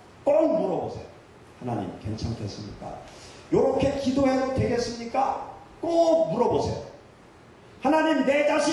꼭 물어보세요. 하나님 괜찮겠습니까? 이렇게 기도해도 되겠습니까? 꼭 물어보세요. 하나님 내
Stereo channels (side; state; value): both; identical; correlation 1.00